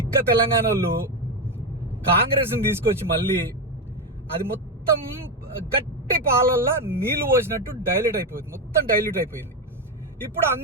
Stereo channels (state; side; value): normal; both; correlation 0.11